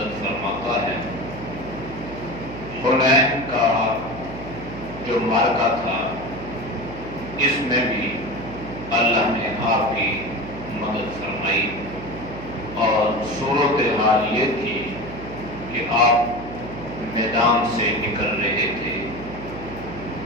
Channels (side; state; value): right; noise; hum, 11 dB below the sound